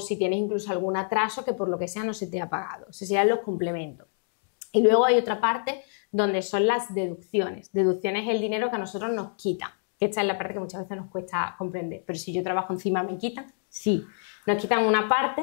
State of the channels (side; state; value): right; silent; digital silence